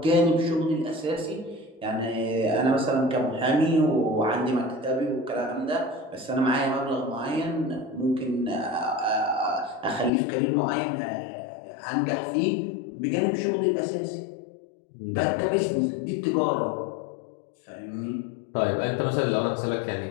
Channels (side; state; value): right; drops out; at 10.1 s